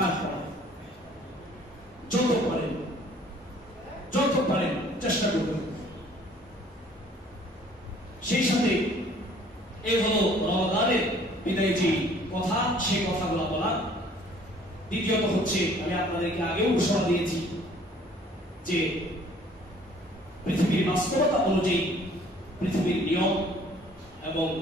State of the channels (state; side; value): normal; both; correlation 0.56